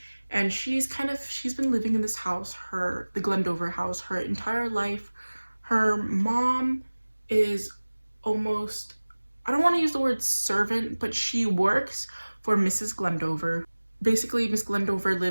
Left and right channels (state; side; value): inverted; both; correlation -1.00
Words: and she's been living in this house, the Glendover house, her entire life. Her mom is almost, I don't want to use the word servant, but she works for Mrs. Glendover. Basically, Miss Glendover